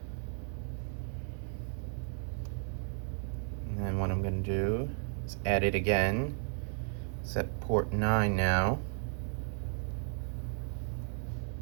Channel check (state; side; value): silent; left; 55 dB below the other